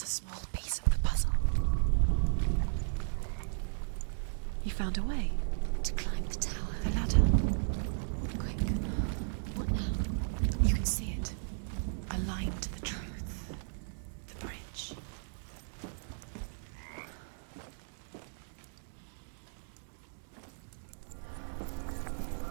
a small piece of the puzzle. You found a way. To climb the tower. The ladder. Quick. What now? You can see it. Aligned to the truth. The bridge.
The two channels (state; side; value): silent; left; digital silence